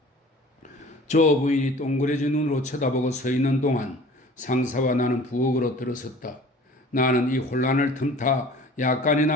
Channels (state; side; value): normal; both; correlation 0.46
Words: 조 부인이 동그래진 눈으로 쳐다보고 서 있는 동안 상사와 나는 부엌으로 들어섰다. 나는 이 혼란을 틈타